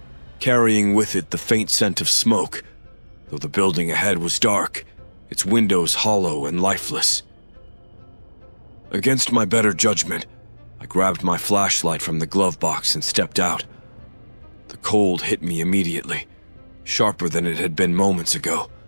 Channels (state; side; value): inverted; both; correlation -1.00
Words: carrying with it the faint scent of smoke, though the building ahead was dark, its windows hollow and lifeless. Against my better judgment, I grabbed my flashlight from the glove box and stepped out. The cold hit me immediately, sharper than it had been moments ago.